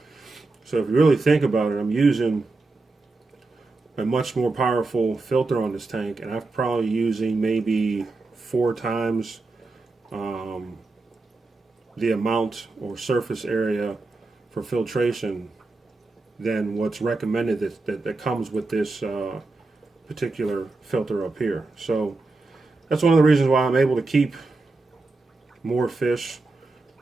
So if you really think about it, I'm using a much more powerful filter on this tank, and I'm probably using maybe 4 times the amount or surface area for filtration than what's recommended that comes with this particular filter up here. So that's one of the reasons why I'm able to keep more fish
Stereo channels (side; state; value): left; quieter; 3.5 dB